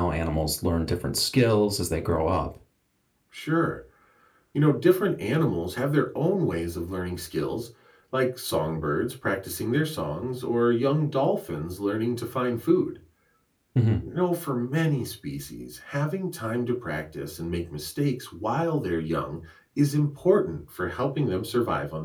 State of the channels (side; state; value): both; identical; correlation 1.00